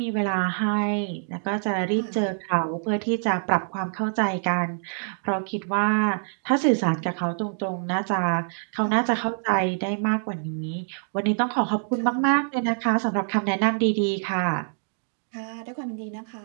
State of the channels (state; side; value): silent; left; digital silence